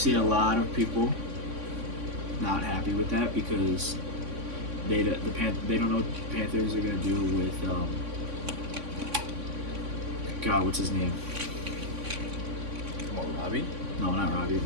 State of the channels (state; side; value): late; left; 3.6 ms